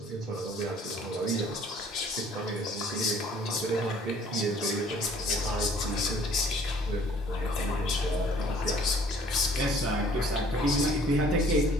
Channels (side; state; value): both; normal; correlation 0.56